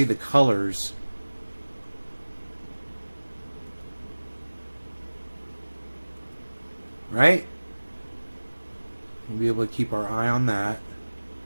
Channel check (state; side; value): inverted; both; correlation -1.00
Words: the colors. Right? We'll be able to keep our eye on that.